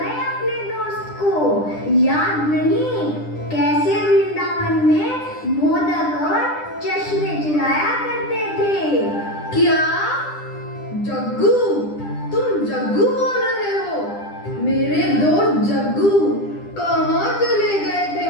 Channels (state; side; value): late; right; 10 ms